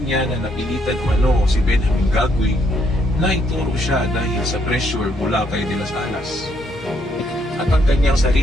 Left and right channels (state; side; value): normal; both; correlation 0.72